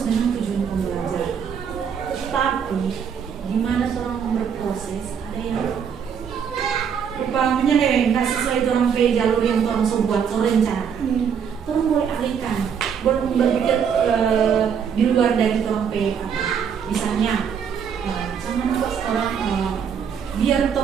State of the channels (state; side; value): quieter; left; 7.3 dB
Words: dengan tujuan pembelajaran. Tapi gimana orang berproses, ada yang rupanya nggak sesuai orang jalur yang orang buat rencana. Orang boleh alihkan, boleh berpikir di luar dari orang misalnya jangan pas orang biar